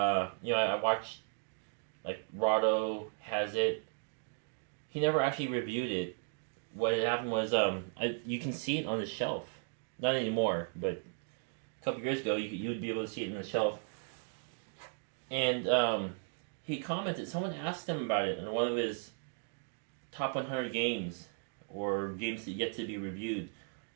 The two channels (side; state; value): left; silent; 54 dB below the other